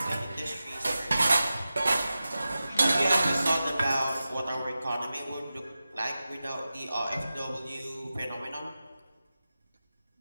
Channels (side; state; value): both; inverted; correlation -0.94